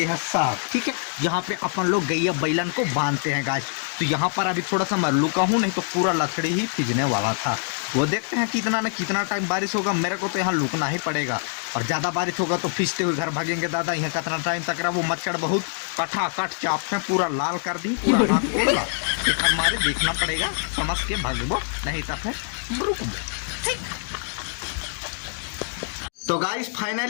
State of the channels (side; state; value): right; silent; digital silence